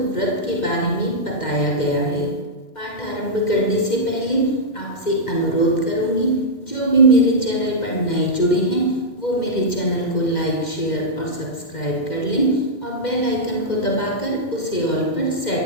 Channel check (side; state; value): right; late; 2.1 ms